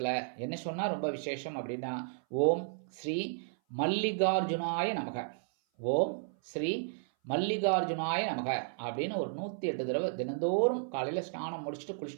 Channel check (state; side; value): silent; left; 56 dB below the other